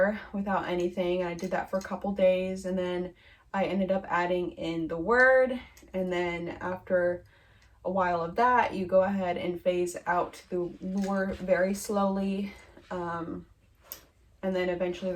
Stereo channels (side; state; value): both; identical; correlation 1.00